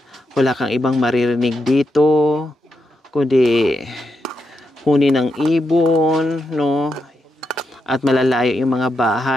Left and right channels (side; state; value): both; normal; correlation 0.84